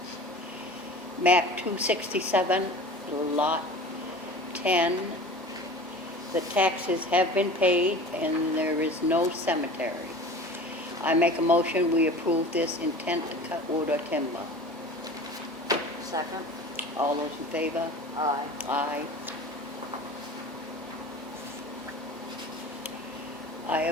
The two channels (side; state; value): both; normal; correlation 0.39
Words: Map 267, lot 10. The taxes have been paid and there is no cemetery. I make a motion we approve this intent to cut wood or timber. Second? All those in favor? Aye. Aye. I